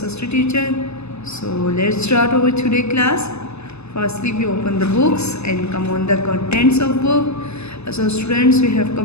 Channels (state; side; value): late; right; 0.80 ms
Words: teacher. So, let's start our today class. Firstly, we open the books and come on the contents of book. So, students, we have